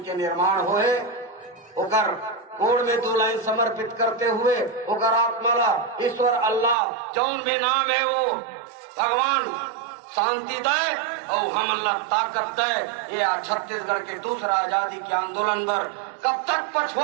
के निर्माण होए ओकर कोड में 2 लाइन समर्पित करते हुए ओकर आत्मा ला ईश्वर अल्लाह जौन भी नाम है वो भगवान शांति दे और हम अल्लाह ताकत दे। ये छत्तीसगढ़ के दूसरा आजादी के आंदोलन दर कब तक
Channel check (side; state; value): left; drops out; at 6.8 s